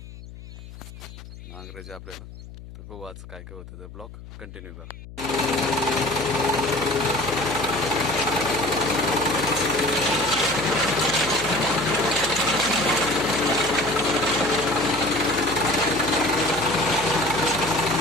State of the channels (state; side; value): noise; left; hum, 15 dB below the sound